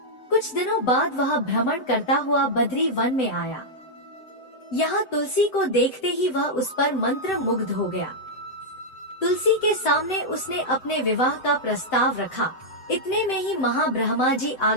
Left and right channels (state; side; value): late; right; 7.8 ms